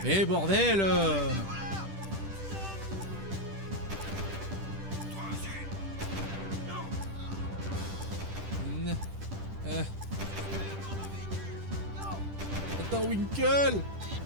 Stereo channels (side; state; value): left; late; 10 ms